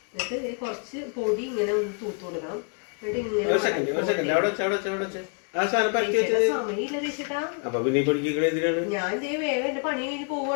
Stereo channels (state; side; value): quieter; right; 39.9 dB